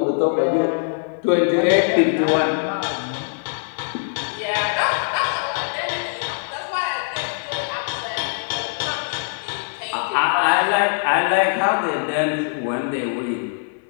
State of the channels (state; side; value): silent; right; digital silence